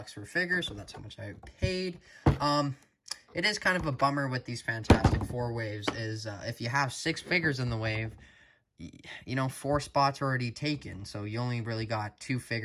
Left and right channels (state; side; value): identical; both; correlation 1.00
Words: for a figure, so that's how much I paid. It is kind of a bummer with these Fantastic Four waves, is if you have 6 figures in the wave, you know, 4 spots are already taken, so you only really got 2